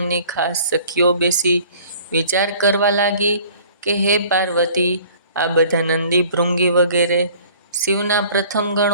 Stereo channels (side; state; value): both; inverted; correlation -0.51